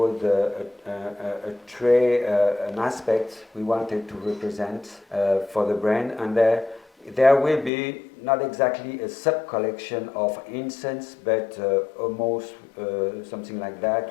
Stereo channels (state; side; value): drops out; right; at 7.7 s